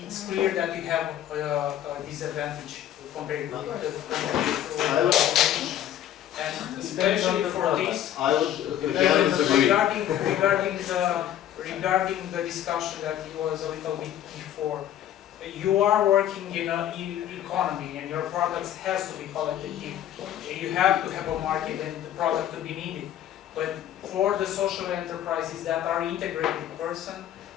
it's clear that you have a disadvantage compared to the and especially for this, I would disagree. regarding the discussion that was a little bit before, you are working in an economy and your products has to be qualitative. You have to have a market and the product to be needed. But for the social enterprises that are integrated person,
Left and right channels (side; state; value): right; quieter; 11.3 dB